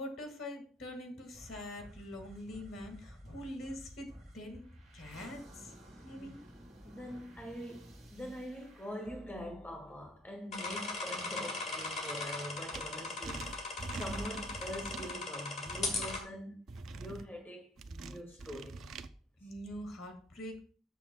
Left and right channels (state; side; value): normal; both; correlation 0.56